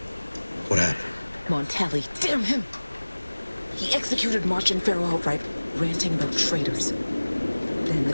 What happened? Montelli, damn him! He executed March and Pharaoh outright, ranting about traitors. Then the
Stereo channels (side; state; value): both; inverted; correlation -1.00